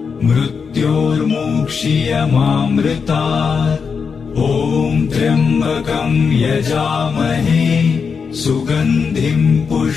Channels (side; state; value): right; quieter; 5.8 dB